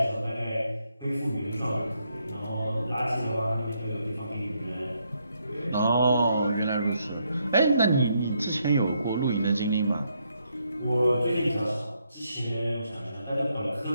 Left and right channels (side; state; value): both; inverted; correlation -0.77